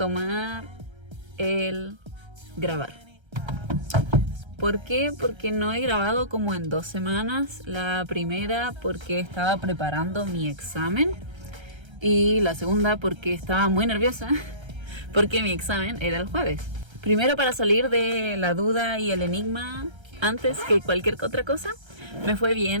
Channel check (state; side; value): late; left; 1.3 ms